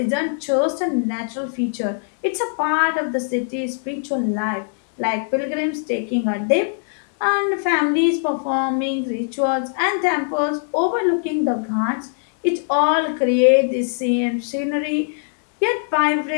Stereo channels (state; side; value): silent; right; digital silence